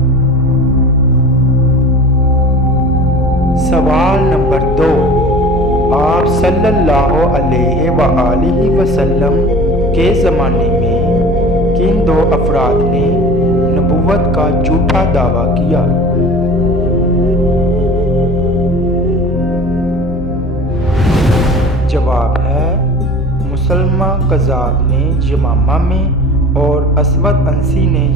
سوال نمبر 2، آپ صلی اللہ علیہ وآلہ وسلم کے زمانے میں کن 2 افراد نے نبوت کا جھوٹا دعویٰ کیا؟ جواب ہے مسلمہ کذاب نے یمامہ میں اور اسود انسی نے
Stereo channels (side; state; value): both; normal; correlation 0.40